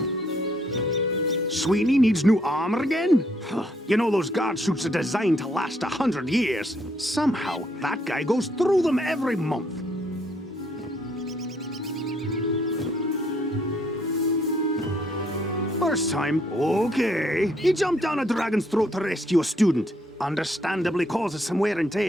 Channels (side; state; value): both; normal; correlation 0.69